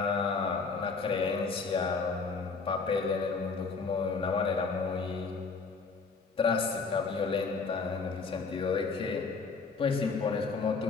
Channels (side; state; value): right; quieter; 4.7 dB